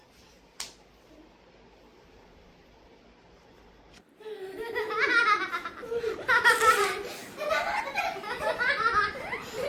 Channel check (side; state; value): both; identical; correlation 1.00